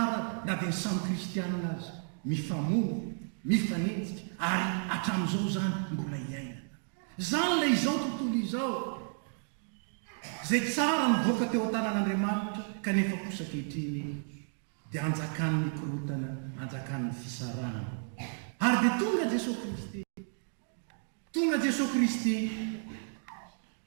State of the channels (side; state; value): left; silent; 56 dB below the other